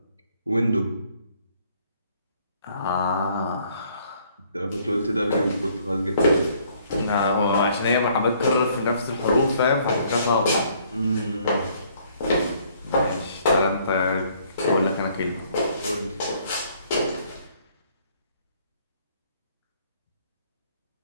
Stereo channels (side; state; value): both; inverted; correlation -0.63